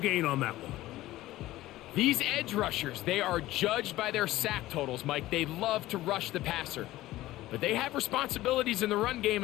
on that one. These edge rushers, they are judged by their sack totals, Mike. They love to rush the passer. But they have responsibilities in the run game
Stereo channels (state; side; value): quieter; right; 16.2 dB